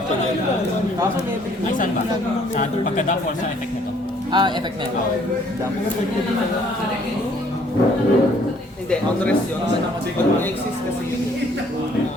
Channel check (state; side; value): normal; both; correlation 0.62